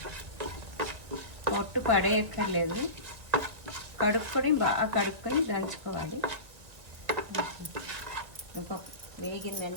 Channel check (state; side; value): late; left; 1.7 ms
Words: పొట్టు పడేయక్కర్లేదు. కడుక్కొని బాగా కడుక్కొని దంచుకోవాలి.